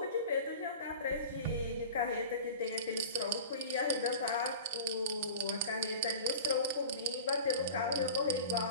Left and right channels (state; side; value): inverted; both; correlation -0.36